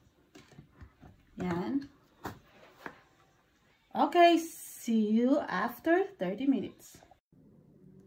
Ayan. Okay. See you after 30 minutes.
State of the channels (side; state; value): both; identical; correlation 1.00